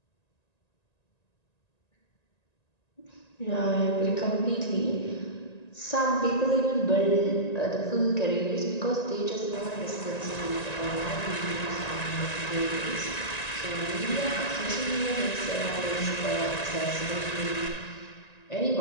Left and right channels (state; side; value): late; right; 1.9 ms